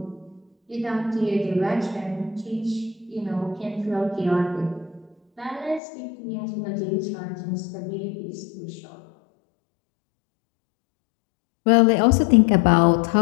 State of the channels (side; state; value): right; drops out; at 5.8 s